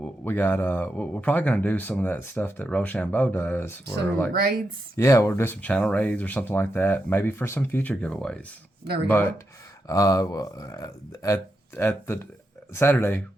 probably gonna do some of that stuff that Rochambeau does. Some like raids. Yeah, we'll do some channel raids or something like that. Maybe for some future giveaways. There we go. But at the Saturday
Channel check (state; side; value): normal; both; correlation 0.85